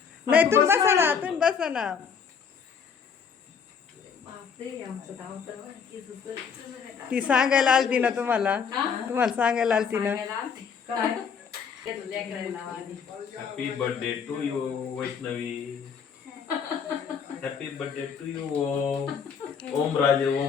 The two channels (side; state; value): right; quieter; 6.5 dB